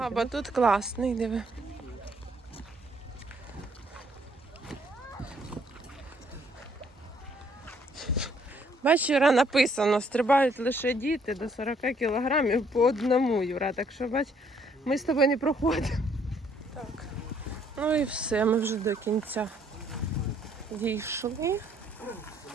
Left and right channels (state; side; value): normal; both; correlation 0.66